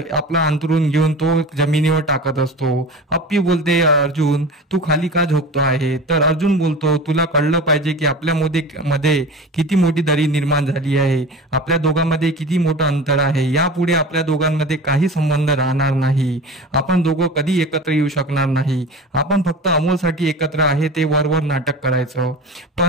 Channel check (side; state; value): both; normal; correlation 0.34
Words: अंथरूण घेऊन तो जमिनीवर टाकत असतो। अप्पी बोलते, अर्जुन तू खाली का झोपतो आहे। तर अर्जुन बोलतो, तुला कळलं पाहिजे की मध्ये किती मोठी दरी निर्माण झाली आहे, आपल्या दोघांमध्ये किती मोठं अंतर आहे। यापुढे आपल्या दोघांमध्ये काही संबंध राहणार नाही, आपण दोघं कधी एकत्र येऊ शकणार नाही। आपण फक्त अमोलसाठी एकत्र आहे ते वरवर नाटक करायचं।